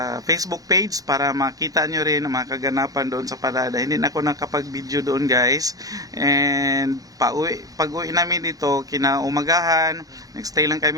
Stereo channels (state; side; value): late; left; 0.17 ms